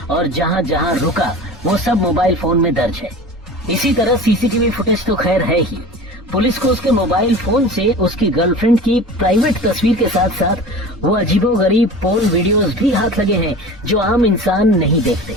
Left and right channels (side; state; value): both; normal; correlation 0.36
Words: और जहां जहां रुका वो सब मोबाइल फोन में दर्ज है। इसी तरह सीसीटीवी फुटेज तो खैर है ही। पुलिस को उसके मोबाइल फोन से उसकी गर्लफ्रेंड की प्राइवेट तस्वीर के साथ साथ वो अजीबोगरीब पोर्न वीडियोस भी हाथ लगे हैं जो आम इंसान नहीं देखते।